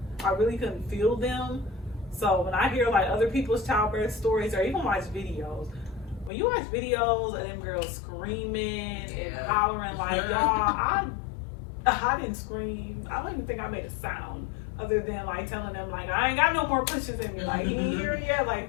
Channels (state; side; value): drops out; right; at 6.3 s